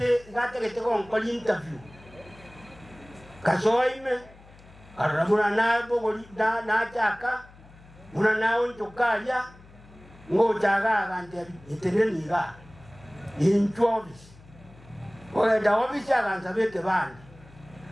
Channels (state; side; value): noise; left; hum, 23 dB below the sound